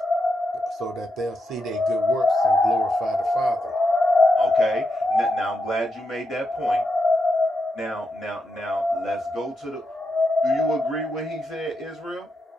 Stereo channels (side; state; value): both; normal; correlation 0.85